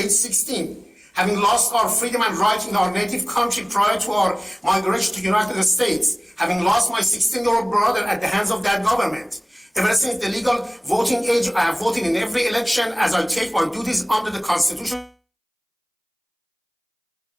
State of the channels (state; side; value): identical; both; correlation 1.00